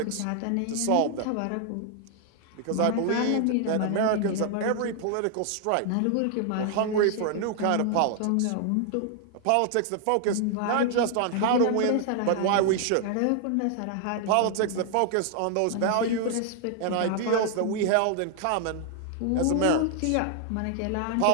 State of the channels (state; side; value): different; both; correlation 0.00